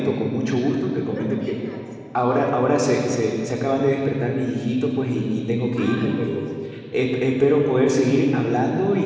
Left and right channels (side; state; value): both; identical; correlation 1.00